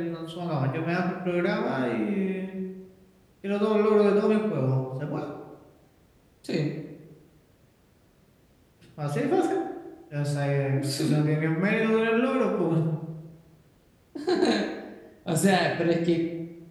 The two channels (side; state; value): both; identical; correlation 1.00